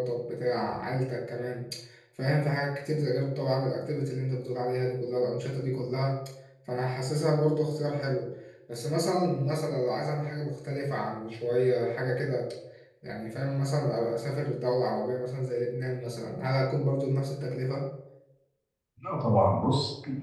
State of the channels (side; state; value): both; identical; correlation 1.00